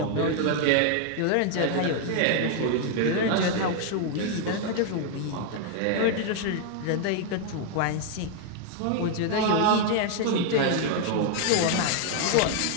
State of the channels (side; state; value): both; different; correlation 0.00